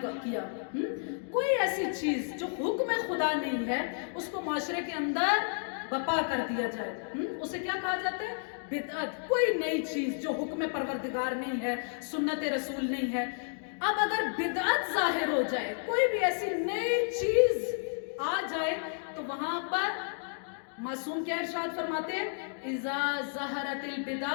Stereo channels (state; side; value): silent; right; 57 dB below the other